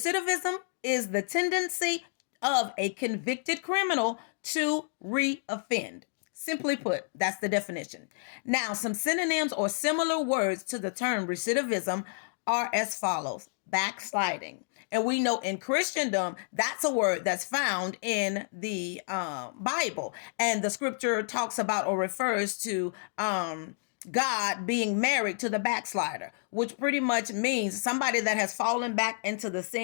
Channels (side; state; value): right; silent; digital silence